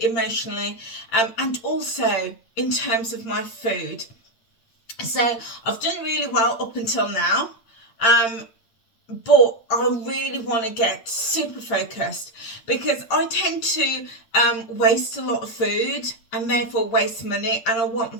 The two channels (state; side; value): late; right; 8.7 ms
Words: emotionally, and also in terms of my food. So I've done really well up until now, but I really want to get super focused because I tend to waste a lot of food and therefore waste money, and I want